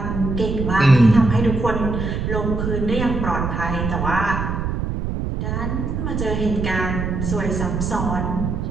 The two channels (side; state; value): right; noise; rumble, 2 dB below the sound